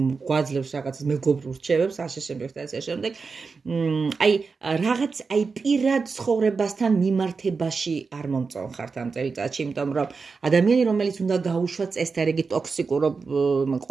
რაღაცას მეგობრულ რჩევებს, ასე შემდეგ და ასე შემდეგ. აი პირად ცხოვრებასთან მიმართებაში არ მომწონხართ ამ წელიწადში, იმიტომ რომ ადამიანი, რომელიც უნდა გაუშვათ წესდარიგი ტოქსიკურ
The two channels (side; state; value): left; quieter; 4.8 dB